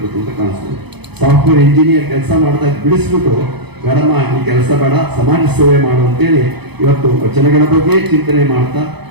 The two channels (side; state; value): left; late; 0.98 ms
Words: ಅಂತ ಕಾಣಿಸ್ತದೆ. ಸಾಫ್ಟ್ವೇರ್ ಇಂಜಿನಿಯರ್ ಕೆಲಸ ಮಾಡ್ತಾ ಬಿಡಿಸ್ಬಿಟ್ಟು ಬೇಡಮ್ಮ ಈ ಕೆಲಸ ಬೇಡ, ಸಮಾಜ ಸೇವೆ ಮಾಡು ಅಂತೇಳಿ ಇವತ್ತು ವಚನಗಳ ಬಗ್ಗೆ ಚಿಂತನೆ ಮಾಡ್ತಾ